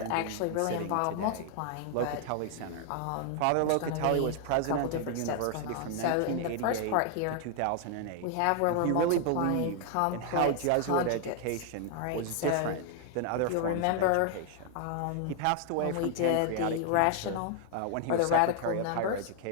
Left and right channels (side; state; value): both; different; correlation 0.00